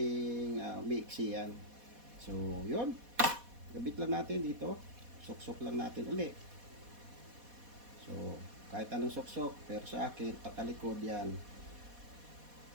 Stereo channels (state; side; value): late; left; 4.1 ms